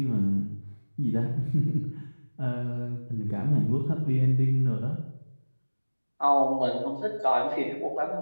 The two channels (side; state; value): both; inverted; correlation -1.00